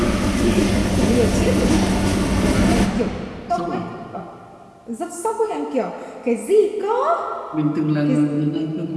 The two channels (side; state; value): both; identical; correlation 1.00